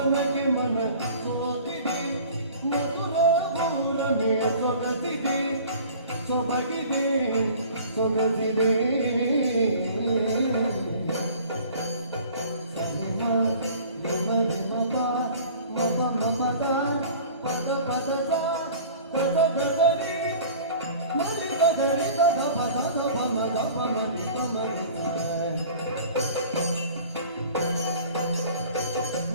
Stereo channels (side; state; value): both; inverted; correlation -0.46